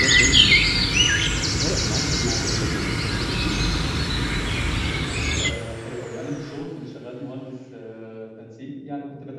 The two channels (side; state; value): both; identical; correlation 1.00